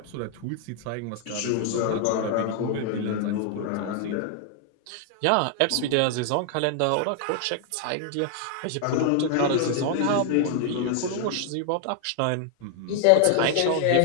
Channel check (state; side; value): different; both; correlation 0.00